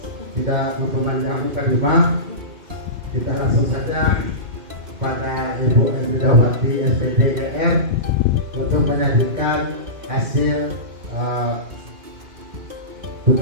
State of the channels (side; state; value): left; late; 2.6 ms